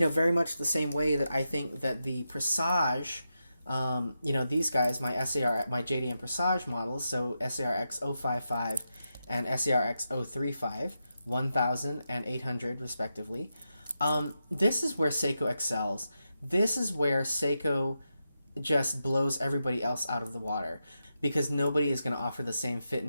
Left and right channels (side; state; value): both; inverted; correlation -0.87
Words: much the same way that I think that the Presage, these guys, my JDM Presage models, so SARX 055 and SARX 035, 1,000 and 800 respectively. This is where Seiko excels. This is where Seiko just blows everybody else out of the water, because nobody is going to offer the same fit